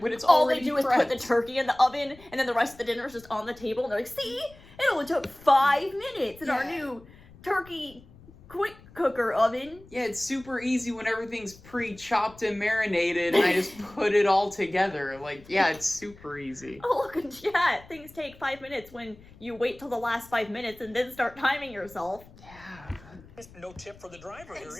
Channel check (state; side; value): noise; left; rumble, 23 dB below the sound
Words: But it's all they already do is put the prepped. turkey in the oven, and then the rest of the dinner is just on the table, and they're like, see? It only took 5 minutes in our Yeah. new turkey quick cooker oven. Yeah, it's super easy when everything's pre-chopped and marinated and I just put it all together. Like, yeah, it's super easy. Oh, look in chat. Things take 5 minutes when you wait till the last 5 minutes and then start timing yourself. Yeah. No tip for the driver here either.